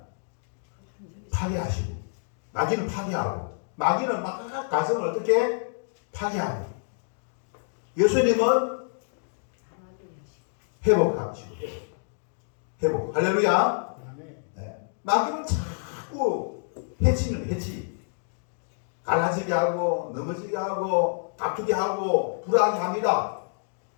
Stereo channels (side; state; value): right; silent; digital silence